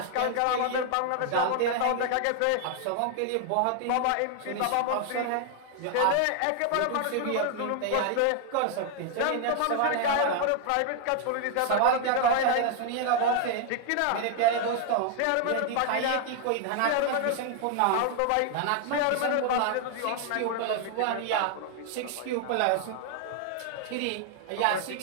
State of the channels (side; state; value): both; different; correlation 0.00